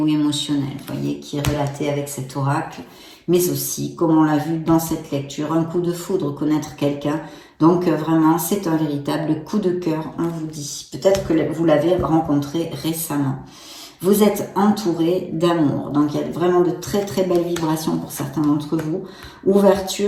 émotionnelle, vous voyez, qui est relatée avec cet oracle. Mais aussi, comme on l'a vu dans cette lecture, un coup de foudre, connaître quelqu'un. Donc, vraiment, c'est un véritable coup de cœur, on vous dit. Peut-être que vous l'avez rencontré récemment. Vous êtes entouré d'amour. Donc, il y a vraiment de très, très belles vibrations pour certains d'entre vous.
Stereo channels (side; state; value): both; identical; correlation 1.00